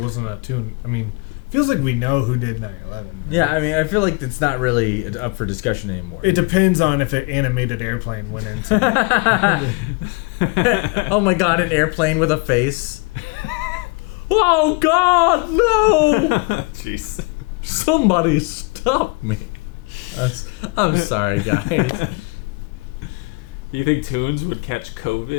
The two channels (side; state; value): right; quieter; 29.2 dB